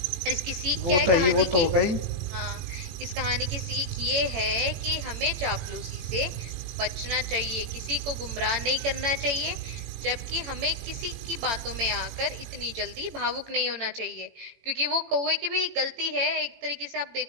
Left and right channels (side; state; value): left; late; 18 ms